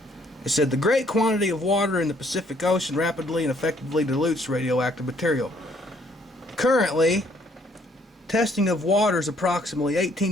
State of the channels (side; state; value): both; normal; correlation 0.65